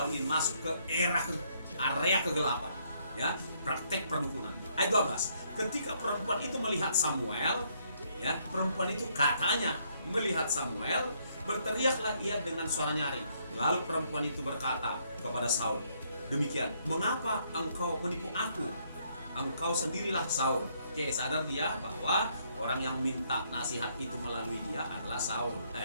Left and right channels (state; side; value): inverted; both; correlation -0.70